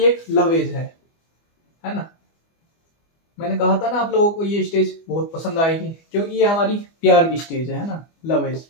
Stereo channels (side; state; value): right; late; 25 ms